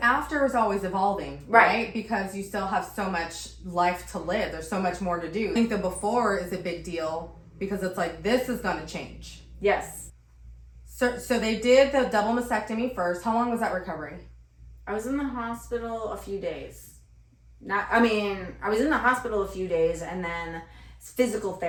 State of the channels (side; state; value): both; identical; correlation 1.00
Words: after is always evolving, right? Because you still have so much life to live. There's so much more to do. I think the before is a big deal because it's like, this is gonna change. Yes. So they did the double mastectomy first. How long was that recovery? I was in the hospital a few days. I was in the hospital a few days and then physical